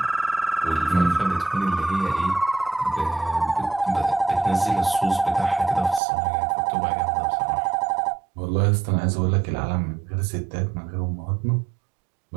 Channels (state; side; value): drops out; left; at 6.0 s